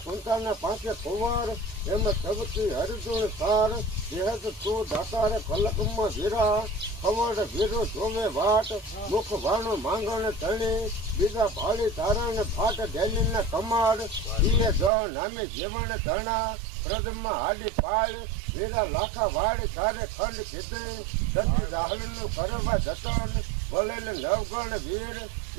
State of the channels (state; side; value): drops out; left; at 14.9 s